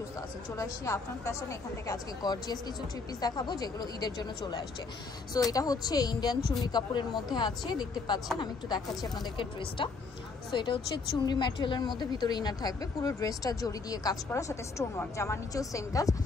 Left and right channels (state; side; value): quieter; right; 4.3 dB